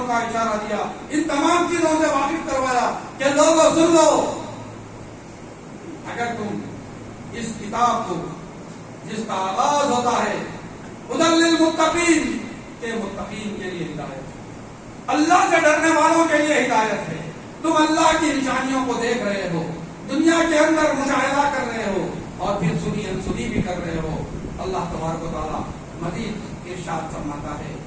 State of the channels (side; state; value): both; identical; correlation 1.00